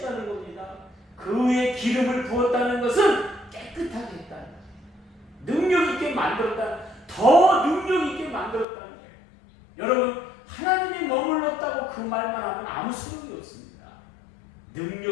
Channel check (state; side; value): drops out; right; at 8.7 s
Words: 겁니다. 그 위에 기름을 부었다는 것은 깨끗하게 했다는 거예요. 능력 있게 만들었다. 더 능력 있게 만들었다는 거예요. 여러분, 하나님이 머물렀다고 그 말만 하면 아무 소용이 없습니다.